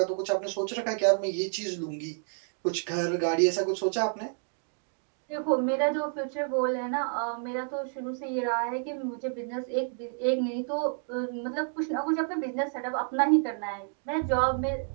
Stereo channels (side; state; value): left; silent; 58 dB below the other